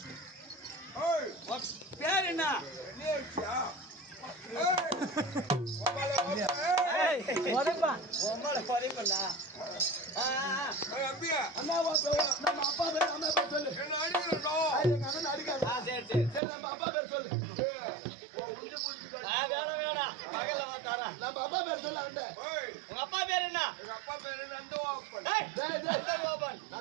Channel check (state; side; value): drops out; left; at 16.4 s